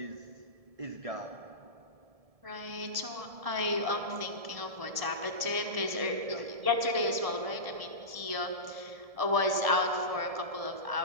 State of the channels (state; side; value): late; left; 1.7 ms